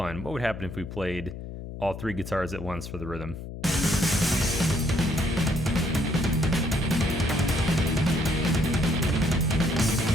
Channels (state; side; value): noise; left; hum, 10 dB below the sound